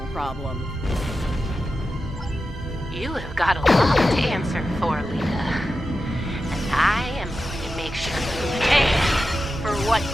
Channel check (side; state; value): both; normal; correlation 0.91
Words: problem. You have got a lot to answer for, Lita. And I am going to make sure you pay for what